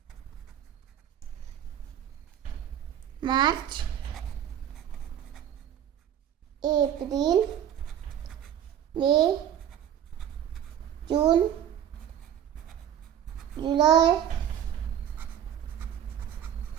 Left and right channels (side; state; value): left; quieter; 10.1 dB